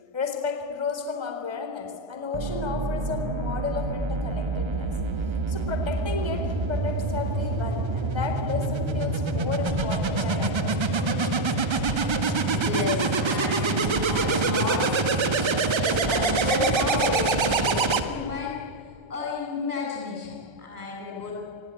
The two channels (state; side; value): late; left; 1.3 ms